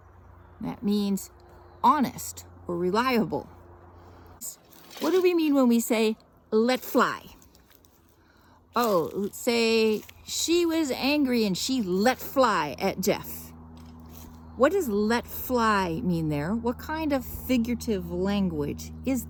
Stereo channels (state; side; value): identical; both; correlation 1.00